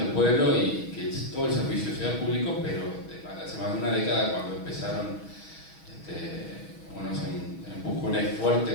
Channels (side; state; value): right; late; 6.2 ms